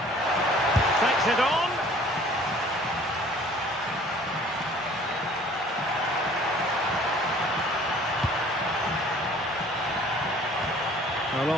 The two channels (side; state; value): both; normal; correlation 0.52